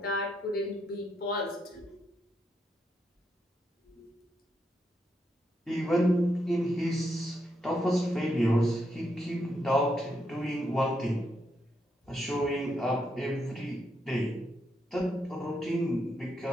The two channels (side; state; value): both; normal; correlation 0.80